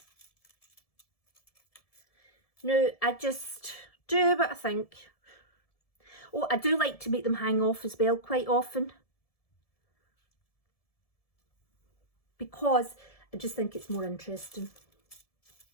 now I just do what I think. Oh, I do like to make them hang off as well quite often, because I just think it's more interesting.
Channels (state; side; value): late; right; 1.7 ms